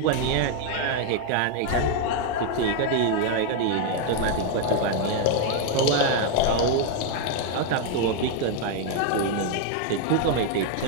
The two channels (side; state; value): both; different; correlation 0.01